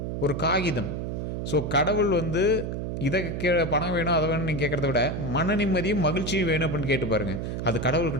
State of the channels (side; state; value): right; noise; hum, 4 dB below the sound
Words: ஒரு காகிதம். ஸோ கடவுள் வந்து இதை பணம் வேணும் அதை வேணும்னு நீங்கள் கேட்குறத விட மன நிம்மதியும் மகிழ்ச்சியும் வேணும் அப்படின்னு கேட்டு பாருங்கள், அது